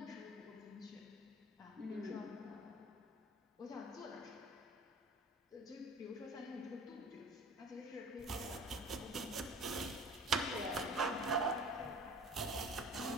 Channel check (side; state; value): both; normal; correlation 0.43